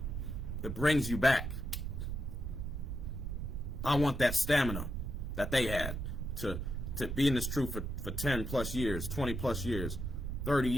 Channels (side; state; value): right; noise; rumble, 4 dB below the sound